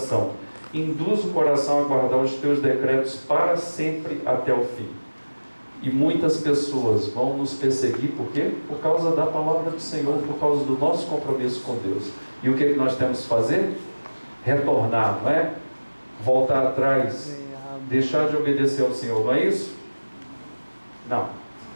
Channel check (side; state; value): both; inverted; correlation -1.00